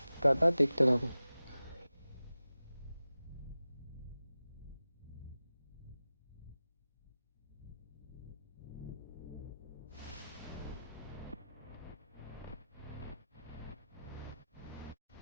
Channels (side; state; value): both; inverted; correlation -0.95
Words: টাটা, দেখতে থাকো।